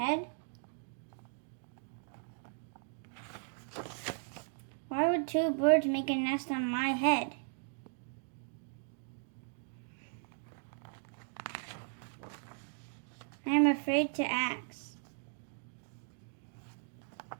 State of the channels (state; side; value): silent; left; digital silence